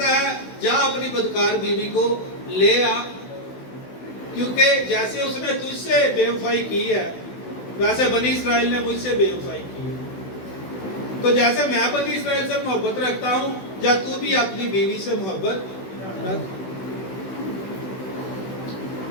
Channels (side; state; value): right; late; 16 ms